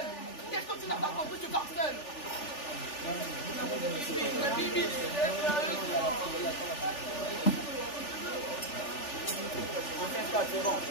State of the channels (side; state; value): right; late; 3.4 ms